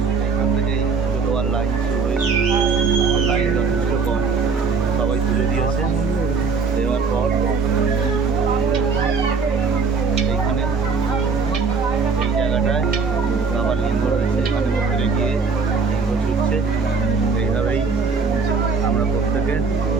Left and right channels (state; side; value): quieter; left; 5.0 dB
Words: এখান থেকে পুজো দেওয়ার লাইন শুরু হয়েছে, লাইন যথেষ্ট কম, সবাই পুজো দিয়েছে। দেওয়ার পর এইখানে এই জায়গাটায় বাবার লিঙ্গ রয়েছে, এখানে মন্দিরে গিয়ে লিঙ্গ ছুটছে। এইভাবেই আমরা প্রত্যেকে